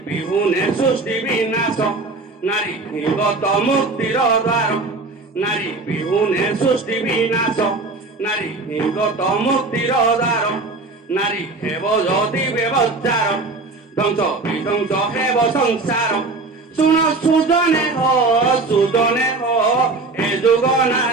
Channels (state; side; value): quieter; left; 3.4 dB